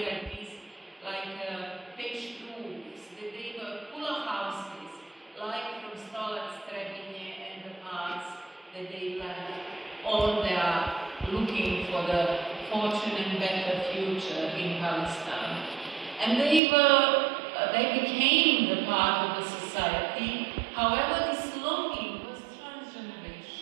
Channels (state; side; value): drops out; left; at 16.6 s